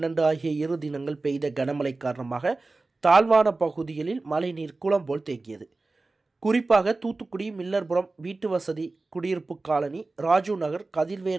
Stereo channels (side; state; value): left; quieter; 3.4 dB